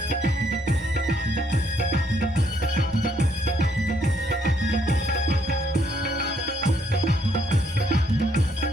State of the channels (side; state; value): both; normal; correlation 0.70